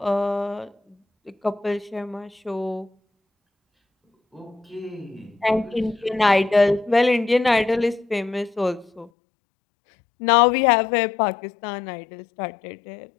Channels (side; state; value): right; drops out; at 9.1 s